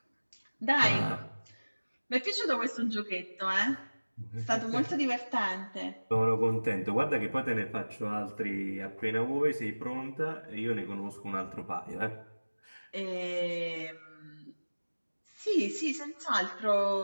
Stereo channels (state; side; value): inverted; both; correlation -1.00